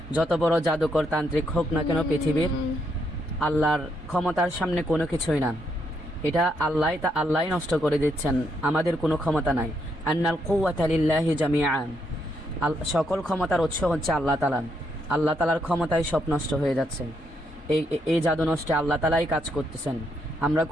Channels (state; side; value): normal; both; correlation 0.77